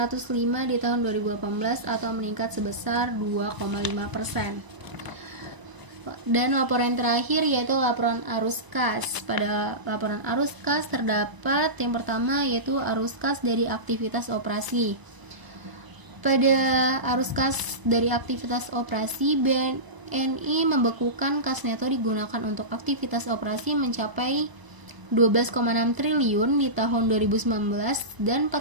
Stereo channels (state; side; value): late; left; 1.0 ms